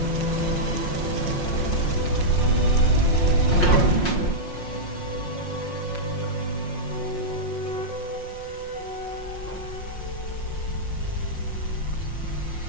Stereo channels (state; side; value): late; right; 5.6 ms